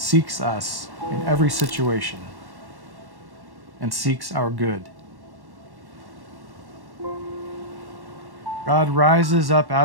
us in every situation and seeks our good. God rises up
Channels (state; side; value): late; left; 1.1 ms